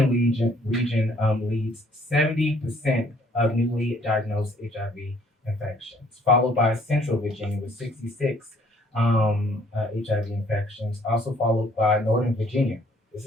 region leads 70% of newly diagnosed HIV infections, followed by Central Virginia with 66 HIV infections, also followed by Northern Virginia. This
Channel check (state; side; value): normal; both; correlation 0.61